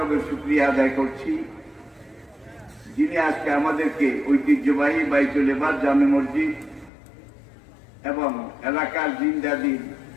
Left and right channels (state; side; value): drops out; right; at 6.9 s